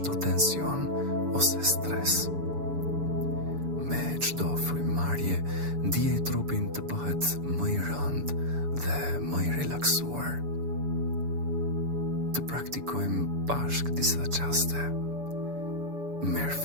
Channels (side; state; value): left; late; 7.0 ms